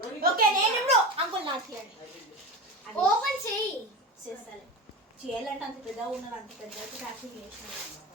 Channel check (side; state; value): both; normal; correlation 0.26